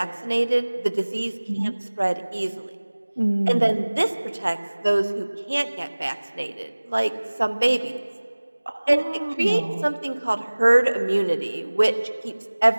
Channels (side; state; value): both; inverted; correlation -1.00